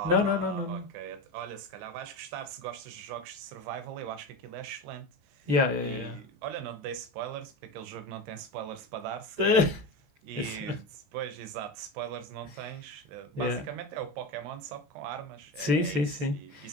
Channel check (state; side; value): late; left; 14 ms